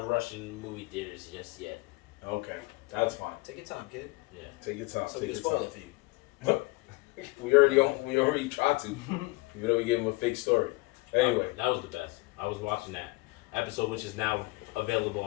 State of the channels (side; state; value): right; quieter; 23.8 dB